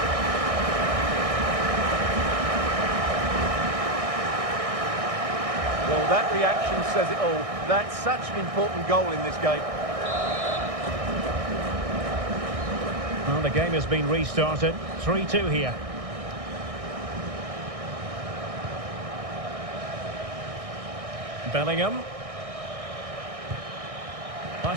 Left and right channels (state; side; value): late; left; 1.6 ms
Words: Well, that reaction says it all. That's such an important goal in this game. Well, the game has been restarted. 3-2 here. Bellingham.